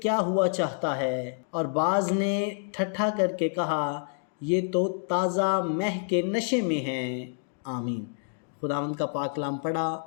کیا ہوا چاہتا ہے، اور بعض نے ٹھٹھا کر کے کہا، یہ تو تازہ مہ کے نشے میں ہیں۔ آمین۔ خداوند کا پاک کلام پڑھا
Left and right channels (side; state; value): right; silent; digital silence